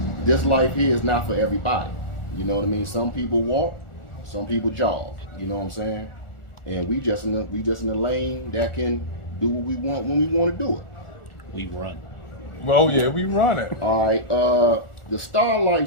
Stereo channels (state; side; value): late; right; 1.4 ms